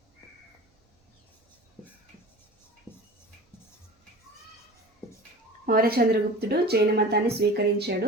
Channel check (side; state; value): both; normal; correlation 0.38